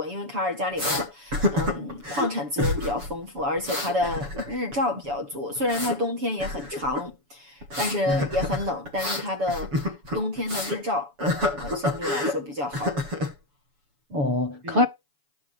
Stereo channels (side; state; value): left; late; 7.0 ms